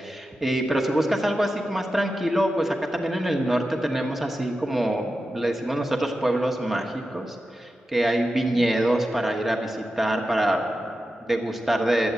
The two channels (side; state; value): both; normal; correlation 0.91